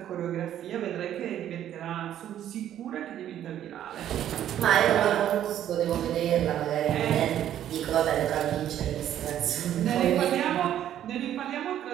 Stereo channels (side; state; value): left; quieter; 11.1 dB